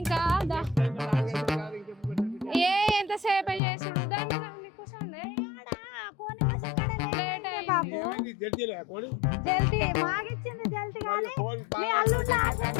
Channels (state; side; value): drops out; right; at 3.6 s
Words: ఎంతసేపు చేసుడు దాన్ని కూర్చోండి. లేట్